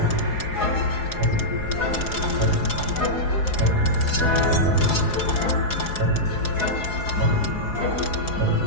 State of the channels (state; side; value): late; right; 4.8 ms